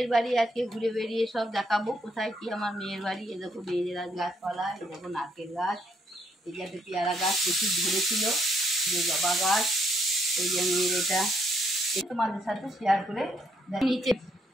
বাড়ি আজকে ঘুরে বেরিয়ে সব দেখাবো কোথায় কি আমার মেয়ের বাড়ি। এ দেখো মেয়েদের গাছপালা, এ দেখো নারকেল গাছ, এই যে একটা পেয়ারা গাছ প্রচুর ধরেছিল, যে জবা গাছ, এই যে মেয়ের এটা তোমাদের সাথে শেয়ার করে নিচে।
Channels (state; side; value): normal; both; correlation 0.73